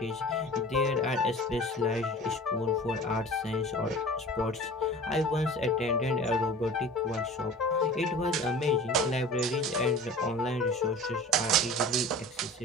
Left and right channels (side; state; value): both; normal; correlation 0.40